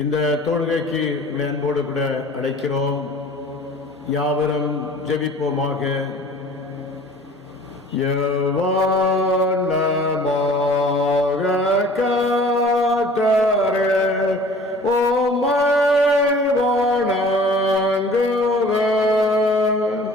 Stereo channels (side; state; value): both; normal; correlation 0.47